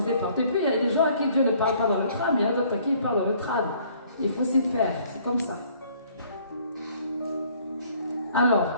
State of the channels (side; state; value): both; inverted; correlation -0.59